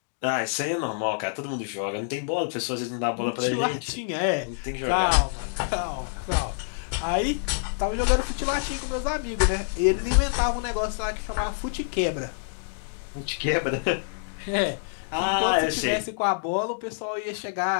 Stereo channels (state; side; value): silent; right; digital silence